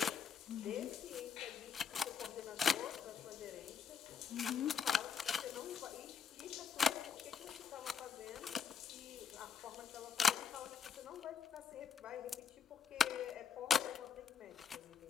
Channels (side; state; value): right; quieter; 7.0 dB